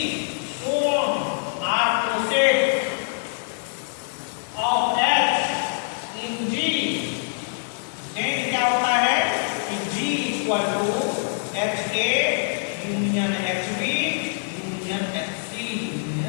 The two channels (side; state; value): right; silent; digital silence